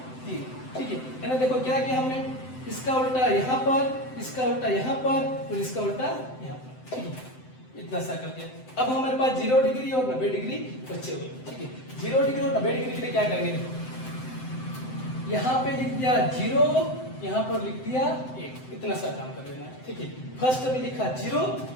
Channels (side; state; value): right; late; 7.8 ms